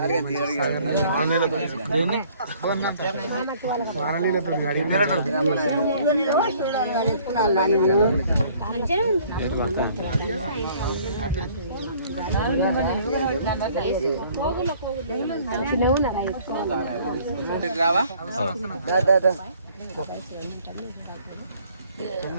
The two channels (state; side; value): inverted; both; correlation -0.57